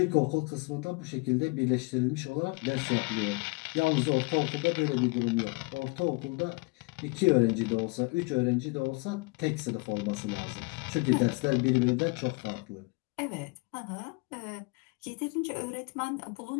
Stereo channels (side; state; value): right; quieter; 28.5 dB